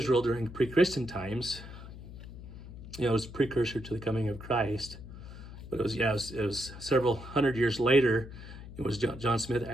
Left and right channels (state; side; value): noise; left; hum, 14 dB below the sound